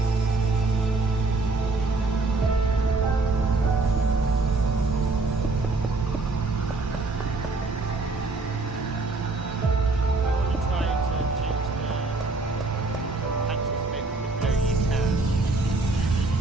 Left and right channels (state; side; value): quieter; left; 3.5 dB